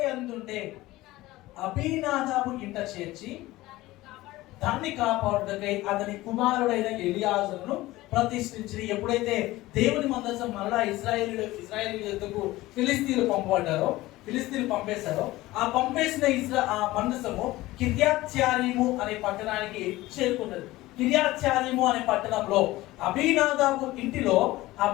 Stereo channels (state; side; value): quieter; right; 18.1 dB